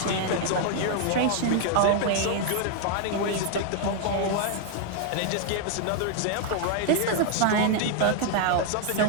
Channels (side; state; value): both; different; correlation 0.00